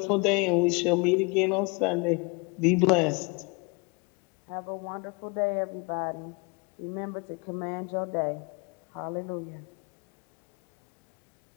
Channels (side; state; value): right; quieter; 30.3 dB